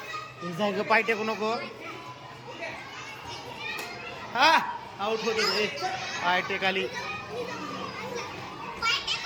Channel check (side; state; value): both; identical; correlation 1.00